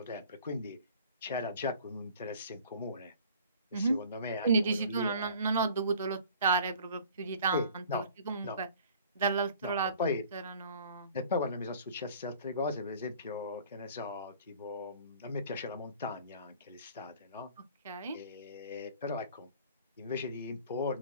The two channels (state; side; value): inverted; both; correlation -0.49